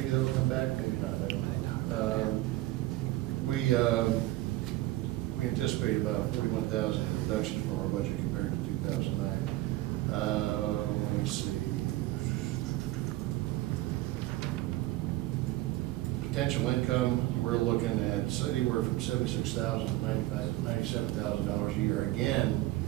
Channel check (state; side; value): quieter; left; 17.3 dB